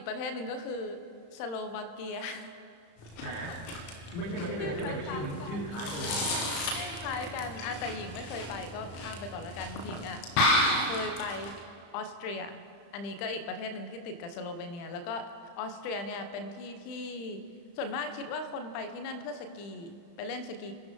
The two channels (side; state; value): right; late; 35 ms